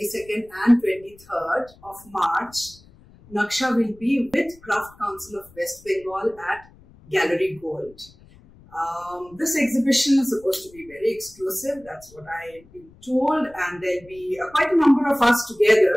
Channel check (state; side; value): noise; left; rumble, 25 dB below the sound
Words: and 23rd of March, Naksha will be with Craft Council of West Bengal at Gallery Gold. This exhibition is supposed to be very exclusive, that's what I've been told, and there'll be quite a number of us